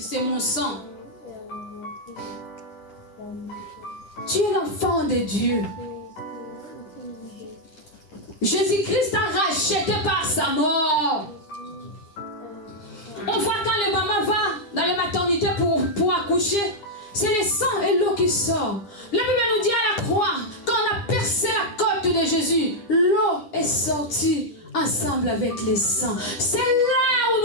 c'est mon sang. Tu es l'enfant de Dieu. Jésus-Christ t'a racheté par sa mort. On voit quand le maman va dans la maternité pour accoucher, c'est le sang et l'eau qui sort. La Bible nous dit à la croix, quand on a percé la côte de Jésus, l'eau est sortie ensemble avec le sang. C'est là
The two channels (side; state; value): right; late; 9.9 ms